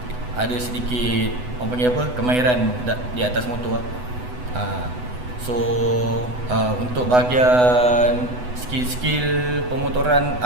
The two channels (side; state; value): left; late; 8.0 ms